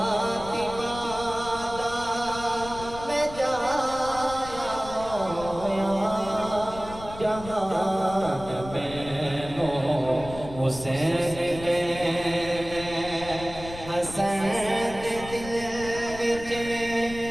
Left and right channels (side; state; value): left; noise; rumble, 14 dB below the sound